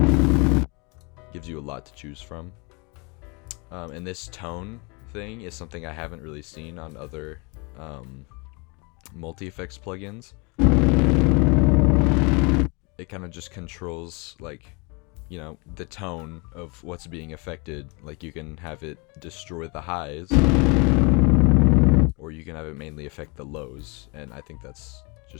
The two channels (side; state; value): right; quieter; 30.6 dB